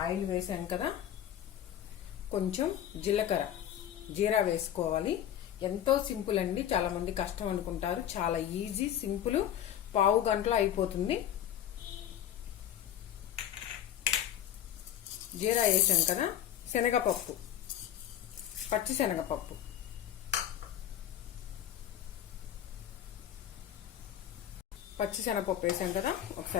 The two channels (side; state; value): right; quieter; 10.7 dB